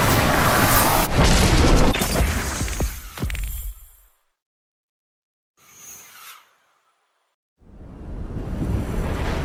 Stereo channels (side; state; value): both; identical; correlation 1.00